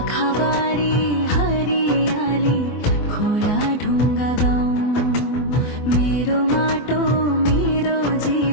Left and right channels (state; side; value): late; right; 24 ms